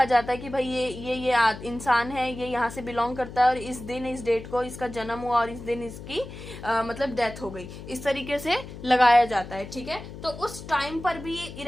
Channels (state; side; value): noise; left; hum, 12 dB below the sound